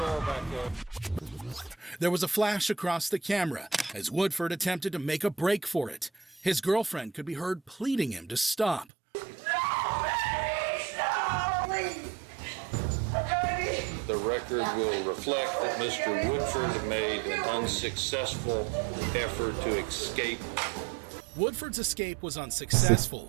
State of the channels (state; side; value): drops out; left; at 8.8 s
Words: There was a flash across the camera as Woodford attempted to make a break for it. His girlfriend could be heard pleading him to stop. The record will reflect that Mr. Woodford made an unsuccessful effort to escape. Woodford's escape was